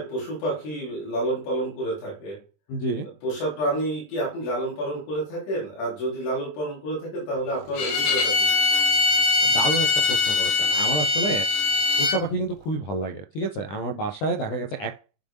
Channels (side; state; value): right; late; 20 ms